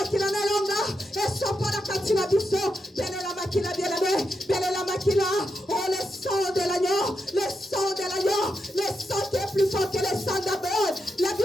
na longa. Eso pola katina biso. Bele la Makila bien aimé. Bele la Makila. Oh le sang de l'agneau. Le sang de l'agneau. Le sang qui est plus fort que le sang d'Abel. La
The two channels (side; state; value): both; normal; correlation 0.85